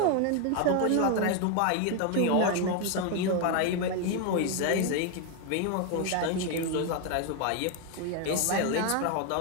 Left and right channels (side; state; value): both; different; correlation 0.01